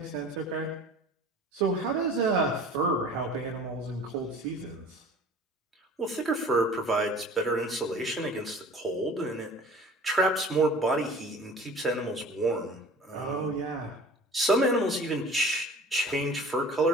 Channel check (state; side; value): normal; both; correlation 0.44